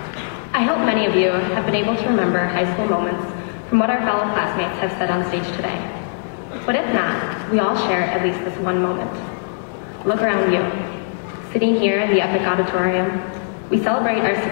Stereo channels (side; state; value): right; silent; digital silence